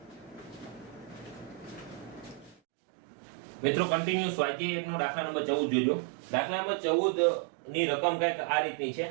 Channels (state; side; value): drops out; left; at 2.6 s